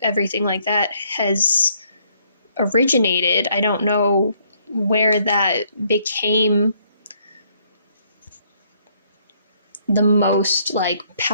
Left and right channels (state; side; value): inverted; both; correlation -0.68